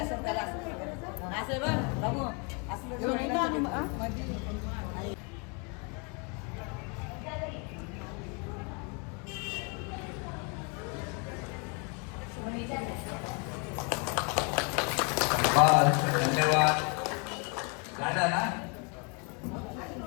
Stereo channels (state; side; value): quieter; right; 34.1 dB